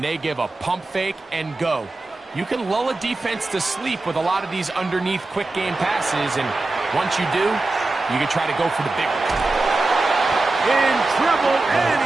they give a pump fake and go. You can lull a defense to sleep with a lot of these underneath quick game passes, and once you do, you can try to go for the big one. In trouble, and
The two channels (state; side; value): quieter; left; 3.2 dB